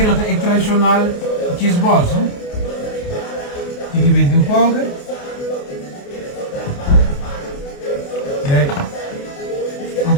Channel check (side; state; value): right; late; 28 ms